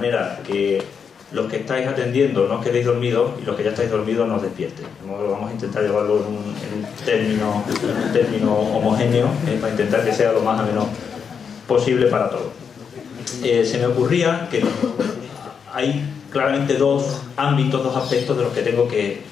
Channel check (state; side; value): quieter; right; 6.6 dB